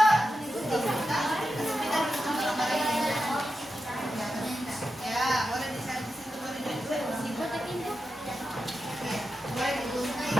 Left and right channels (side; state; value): both; normal; correlation 0.90